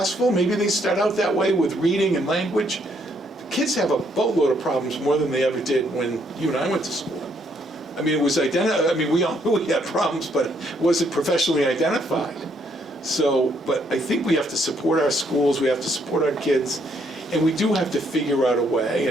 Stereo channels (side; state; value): both; normal; correlation 0.71